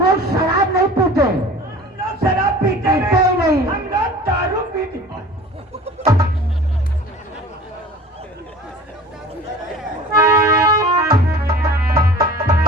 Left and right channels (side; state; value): both; normal; correlation 0.42